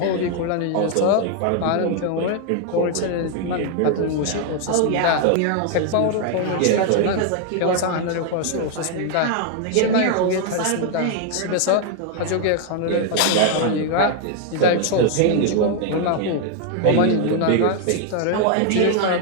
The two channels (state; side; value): different; both; correlation 0.00